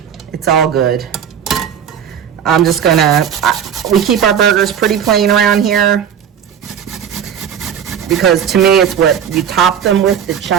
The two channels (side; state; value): left; quieter; 8.5 dB